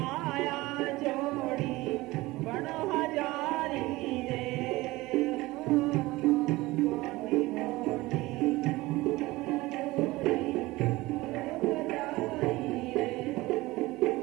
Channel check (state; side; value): quieter; left; 19.9 dB